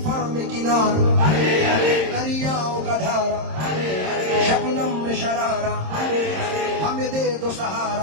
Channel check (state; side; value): late; left; 26 ms